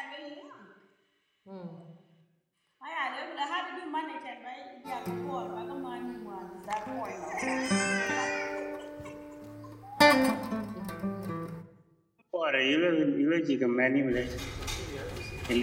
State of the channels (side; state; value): both; identical; correlation 1.00